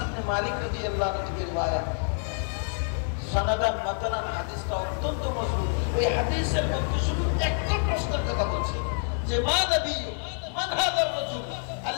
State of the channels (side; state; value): right; silent; 60 dB below the other